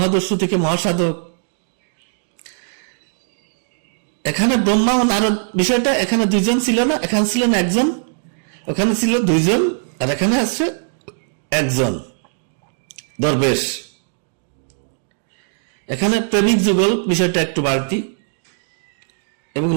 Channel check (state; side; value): silent; left; digital silence